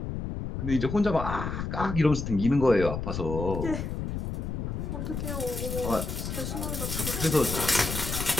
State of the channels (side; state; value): left; noise; rumble, 4 dB below the sound